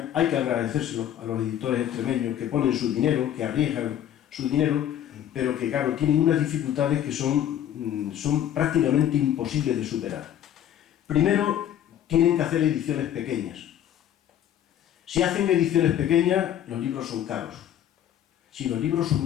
Hay que agradecérselo a los editores extremeños que ponen su dinero, que arriesgan su dinero, pero que, claro, tienen unas dificultades que son prácticamente imposibles de superar. Primero, tienen que hacer ediciones pequeñas. Si hacen ediciones pequeñas, los libros son caros. Si los libros son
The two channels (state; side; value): quieter; right; 10.7 dB